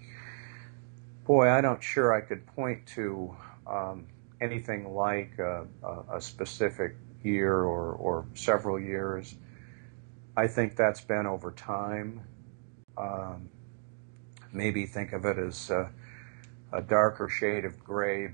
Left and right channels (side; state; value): left; silent; digital silence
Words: Boy, I'm not sure I could point to anything like a specific year or several years. I think that's been over time. Maybe think of it as a darker shade of gray